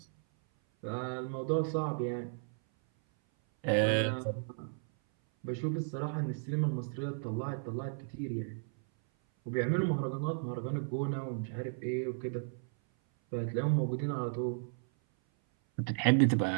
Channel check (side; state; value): left; silent; 55 dB below the other